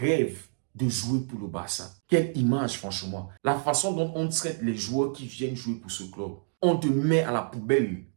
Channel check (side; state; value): left; silent; digital silence